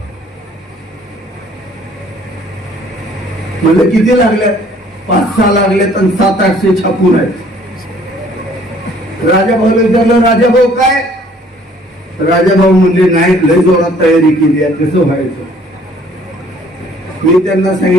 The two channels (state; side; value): normal; both; correlation 0.58